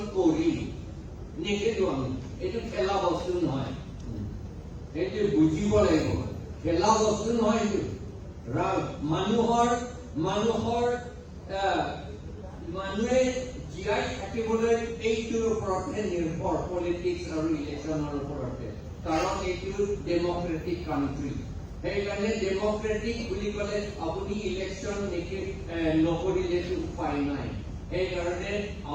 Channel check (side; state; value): both; identical; correlation 1.00